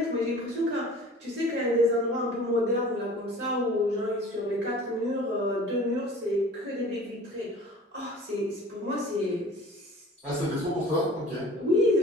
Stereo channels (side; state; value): both; normal; correlation 0.45